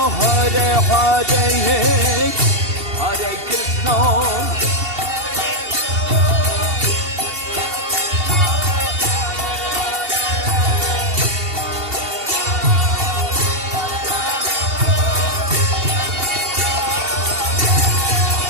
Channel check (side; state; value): left; late; 2.7 ms